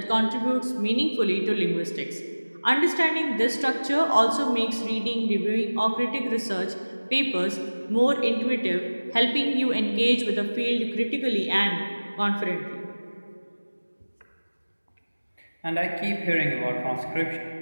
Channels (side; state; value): both; inverted; correlation -1.00